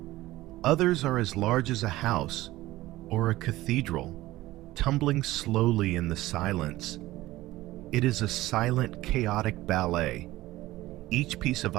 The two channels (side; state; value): left; quieter; 17.2 dB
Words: Others are as large as a house or a cathedral, tumbling slowly in the silence. It is a silent, chaotic ballet. Each piece of